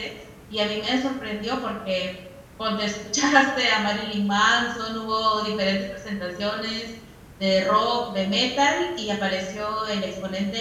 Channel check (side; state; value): both; identical; correlation 1.00